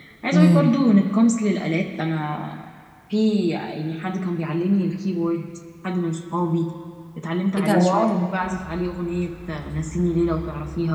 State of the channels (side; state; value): both; identical; correlation 1.00